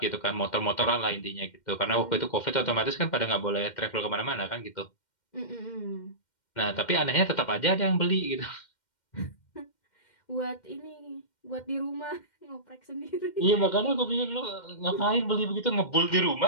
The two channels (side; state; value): right; late; 2.1 ms